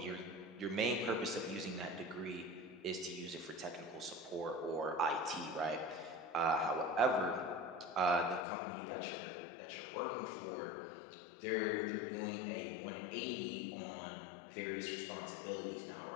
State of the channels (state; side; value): drops out; right; at 8.4 s